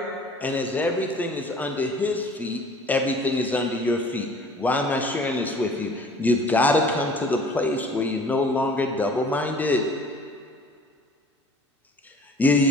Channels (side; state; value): both; normal; correlation 0.49